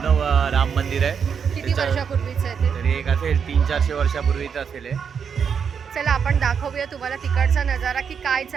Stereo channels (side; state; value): left; quieter; 6.8 dB